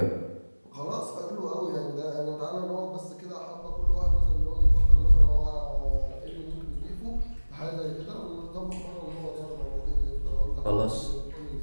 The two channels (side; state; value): both; inverted; correlation -1.00